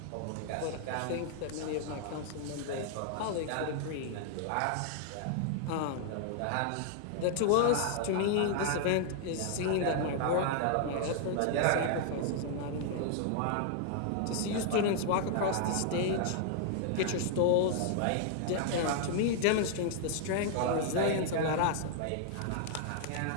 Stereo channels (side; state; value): both; different; correlation 0.00